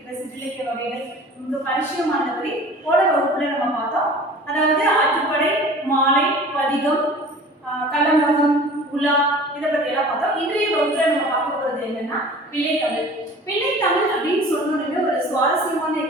சிற்றிலக்கிய வகைகள் ரொம்ப பரிச்சயமானபடி போன வகுப்புல நம்ம பார்த்தோம். அதாவது ஆற்றுப்படை, மாலை, பதிகம், கலம்பகம், உலா, இதை பத்தி எல்லாம் பார்த்தோம். இன்றைய வகுப்புல நம்ம பார்க்க போறது என்னன்னா பிள்ளைத்தமிழ். பிள்ளைத்தமிழ் அப்படின்னு சொன்னோடனே ஒரு சுவாரஸ்யமான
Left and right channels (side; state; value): both; normal; correlation 0.44